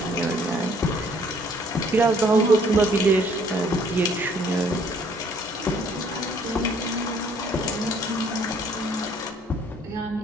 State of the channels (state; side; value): normal; both; correlation 0.61